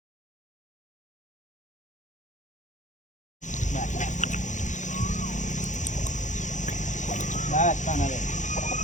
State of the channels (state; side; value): late; right; 0.35 ms